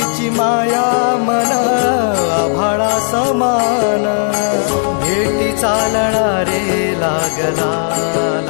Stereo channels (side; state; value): right; silent; digital silence